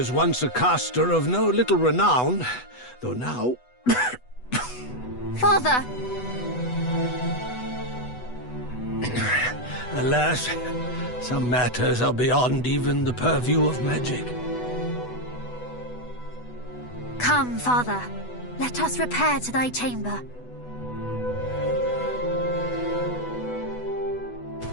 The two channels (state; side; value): late; right; 8.1 ms